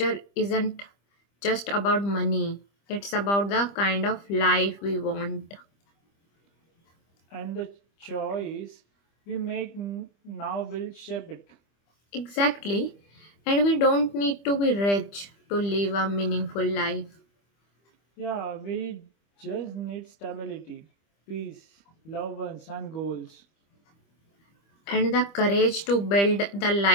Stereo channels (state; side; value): late; right; 25 ms